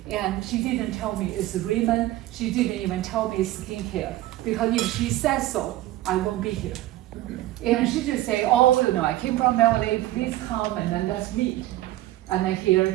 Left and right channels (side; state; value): left; quieter; 15.6 dB